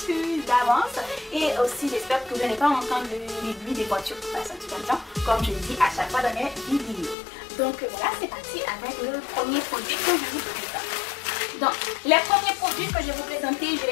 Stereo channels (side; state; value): right; drops out; at 7.2 s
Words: d'avance. Et aussi j'espère que vous n'allez pas entendre les bruits des voitures qui passent un petit peu de temps, comme je le dis à chaque fois dans mes vidéos. Donc voilà, c'est parti avec le premier produit que je vous présente. Donc les premiers produits que je vais vous présenter, je